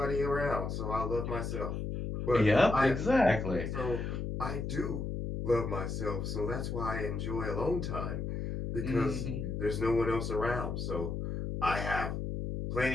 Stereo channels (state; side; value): noise; left; hum, 3 dB below the sound